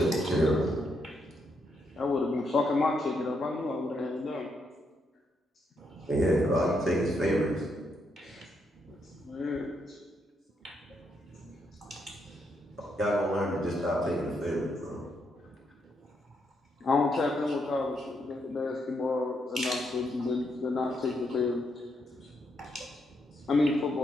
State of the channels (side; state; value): both; normal; correlation 0.78